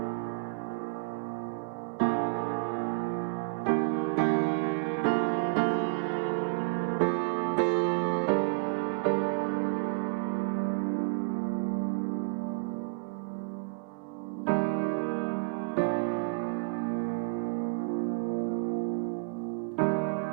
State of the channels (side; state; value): left; quieter; 35.6 dB